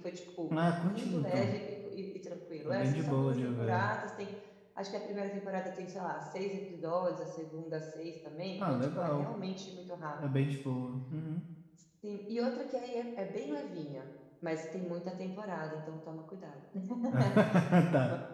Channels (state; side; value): identical; both; correlation 1.00